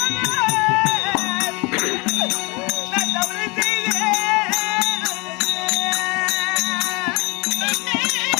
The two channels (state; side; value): quieter; right; 27.6 dB